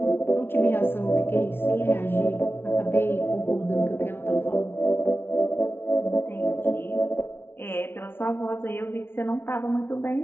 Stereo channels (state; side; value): late; right; 0.11 ms